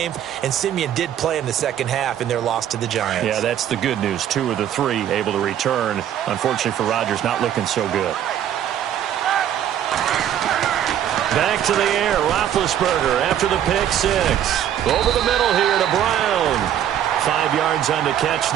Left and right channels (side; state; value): left; quieter; 10.5 dB